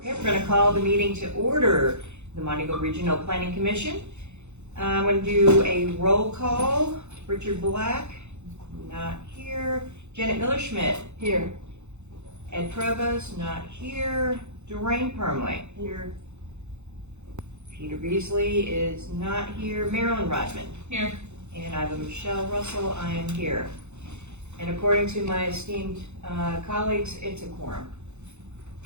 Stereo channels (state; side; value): late; left; 0.82 ms